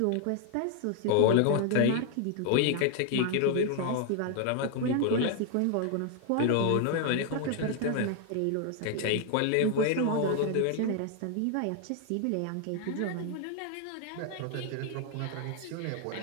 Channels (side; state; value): both; different; correlation 0.00